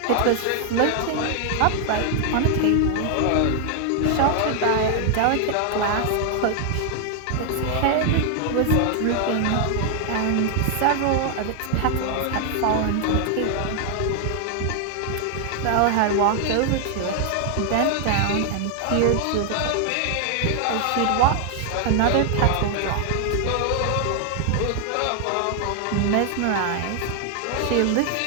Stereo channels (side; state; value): both; different; correlation 0.00